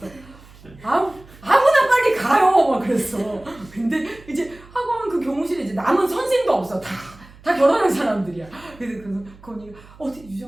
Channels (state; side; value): noise; right; hum, 23 dB below the sound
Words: 아무나 빨리 가요 막 그랬어. 근데 이제 학원 그 교무실에 이제 남은 선생도 없어. 다 결혼한 사람들이야. 그래서 그 언니가 어떻게